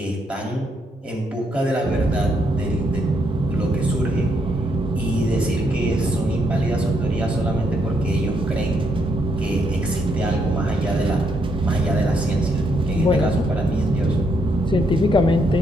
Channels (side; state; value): both; normal; correlation 0.76